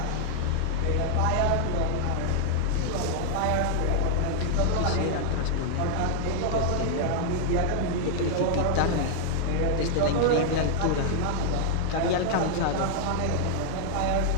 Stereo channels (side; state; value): both; different; correlation -0.01